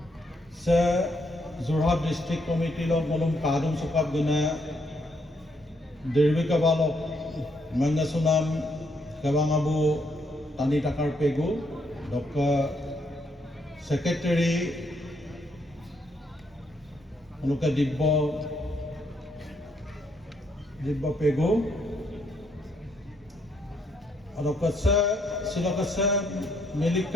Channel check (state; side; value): normal; both; correlation 0.73